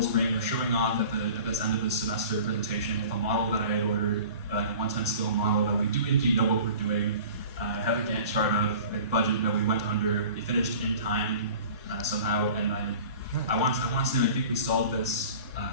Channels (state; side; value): inverted; both; correlation -0.43